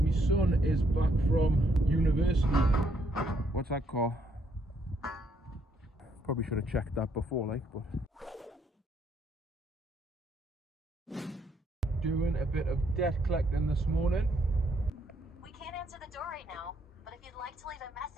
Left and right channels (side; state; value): both; normal; correlation 0.72